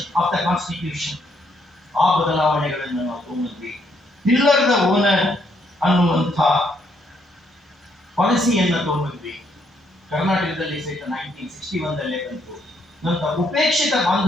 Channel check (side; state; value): both; normal; correlation 0.72